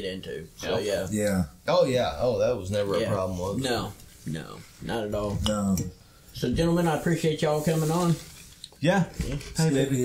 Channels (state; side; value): identical; both; correlation 1.00